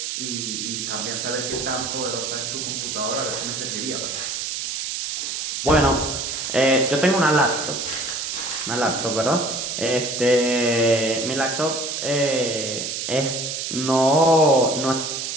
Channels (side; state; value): right; noise; hiss, 3 dB below the sound